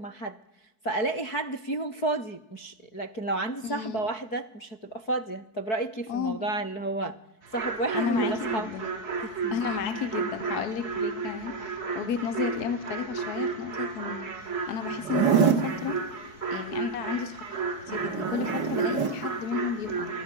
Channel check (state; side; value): late; right; 4.6 ms